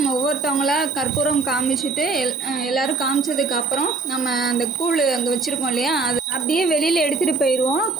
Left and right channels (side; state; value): left; quieter; 4.0 dB